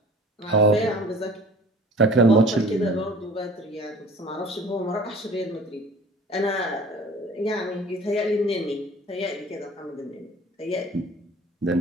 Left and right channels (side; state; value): both; normal; correlation 0.46